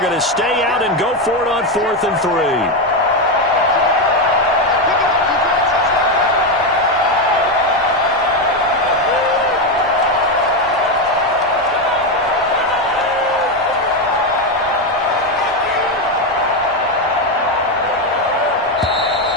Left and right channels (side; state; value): both; normal; correlation 0.09